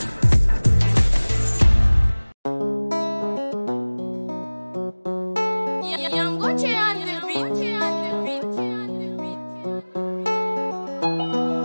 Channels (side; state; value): both; inverted; correlation -1.00